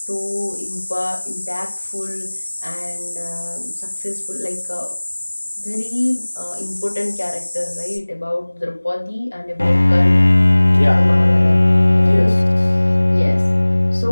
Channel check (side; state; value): both; inverted; correlation -1.00